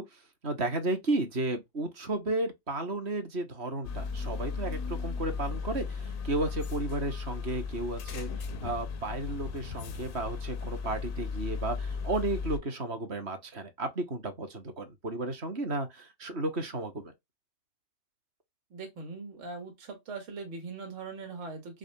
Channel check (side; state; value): left; late; 3.1 ms